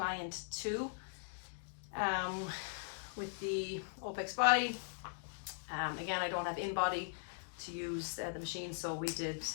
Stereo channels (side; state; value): right; silent; digital silence